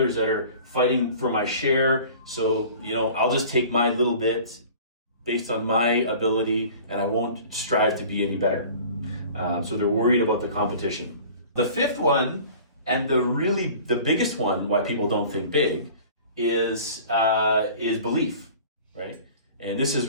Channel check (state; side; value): inverted; both; correlation -0.44